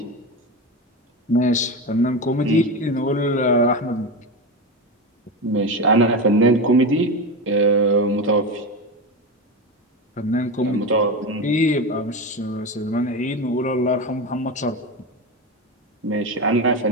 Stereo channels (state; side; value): normal; both; correlation 0.19